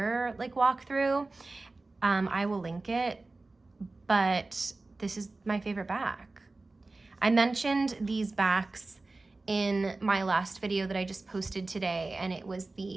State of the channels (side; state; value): left; quieter; 3.3 dB